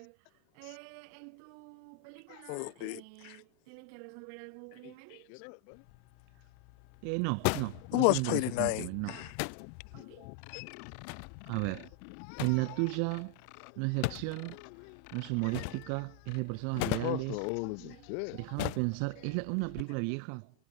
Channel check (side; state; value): both; different; correlation 0.00